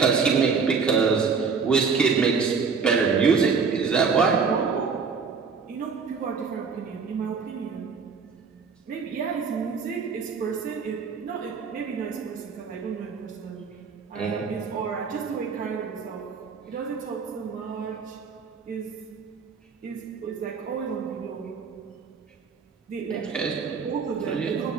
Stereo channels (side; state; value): left; quieter; 5.5 dB